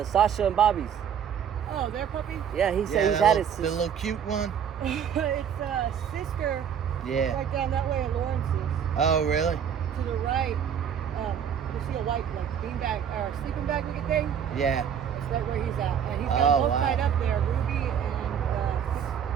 Sasha and Bobby's. Oh, their puppy? Yeah, he said he's the had little, it. the little cute one. It's sister. Yeah. Right down that way in Lawrence's. Oh, really? To the right, you see a white beanbag or sleeping bag looking thing? Yeah. That's right where he's at. And he's got Oh, both wow. tied up there, Ruby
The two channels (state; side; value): quieter; left; 8.2 dB